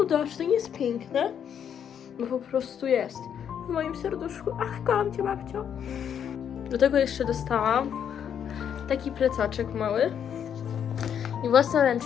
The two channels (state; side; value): quieter; right; 8.5 dB